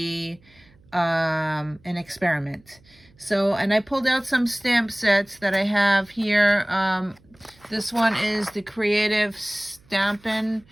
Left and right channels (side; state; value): right; noise; hum, 30 dB below the sound